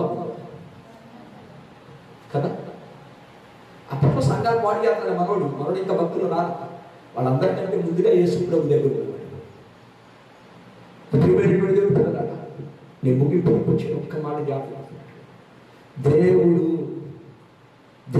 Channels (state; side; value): identical; both; correlation 1.00